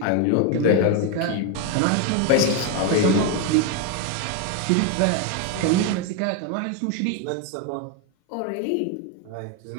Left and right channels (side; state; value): both; different; correlation 0.01